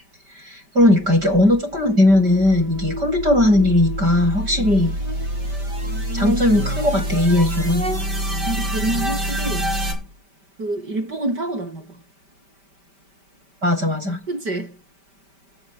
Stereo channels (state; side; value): late; left; 5.1 ms